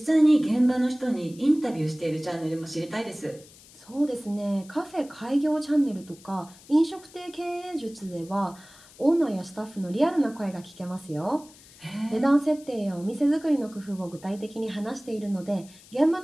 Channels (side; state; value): left; noise; hiss, 23 dB below the sound